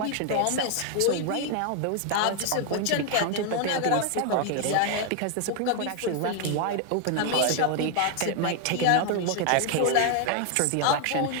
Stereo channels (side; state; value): both; different; correlation 0.00